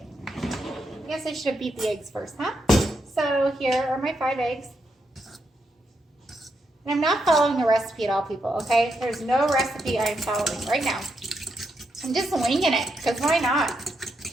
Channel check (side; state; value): both; normal; correlation 0.81